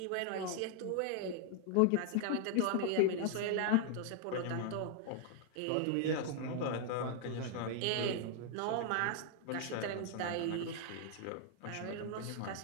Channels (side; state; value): both; different; correlation -0.01